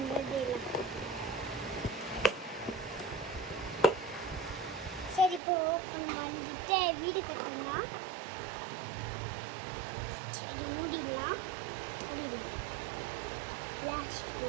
பண்ணிடலாம். சரி, இப்போ ஓப்பன் பண்ணிட்டு வீடு கட்டணும். சரி, மூடிடலாம். Last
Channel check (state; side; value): drops out; left; at 5.4 s